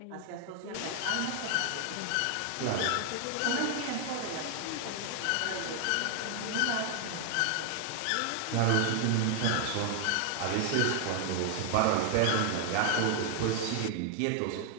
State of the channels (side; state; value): both; different; correlation 0.00